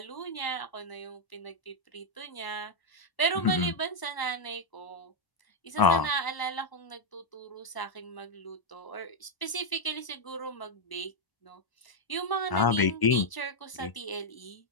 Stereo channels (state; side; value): late; right; 1.0 ms